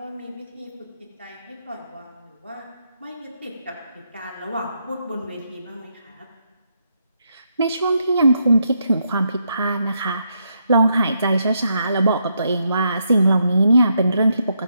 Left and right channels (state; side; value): inverted; both; correlation -0.79